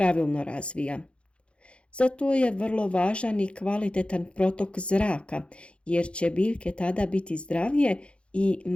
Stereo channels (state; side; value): late; right; 0.059 ms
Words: razvija. Zato je vrlo važan i kvalitetan protok zraka, jer će biljke tada biti zdravije i